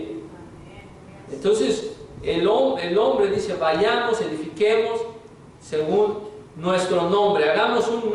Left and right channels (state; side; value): identical; both; correlation 1.00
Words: Entonces el hombre dice, vayamos, edifiquemos según nuestro nombre, hagamos un